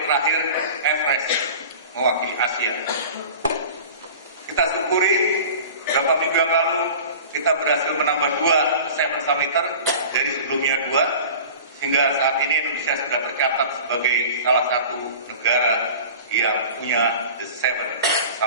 Everest mewakili Asia. Kita syukuri beberapa minggu yang lalu kita berhasil menambah 2 seven summiter dari sebelumnya 2, sehingga saat ini Indonesia sudah tercatat sebagai salah satu negara yang punya the seven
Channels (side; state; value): both; inverted; correlation -0.39